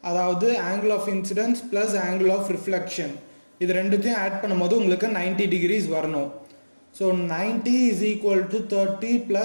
அதாவது angle of incidence plus angle of reflection, இது ரெண்டுத்தையும் ஆட் பண்ணும்போது உங்களுக்கு 90 டிகிரிஸ் வரணும். So 90 is equal to 30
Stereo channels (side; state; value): both; inverted; correlation -1.00